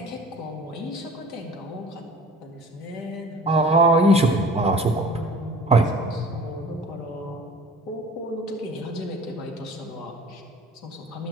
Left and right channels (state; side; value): normal; both; correlation 0.44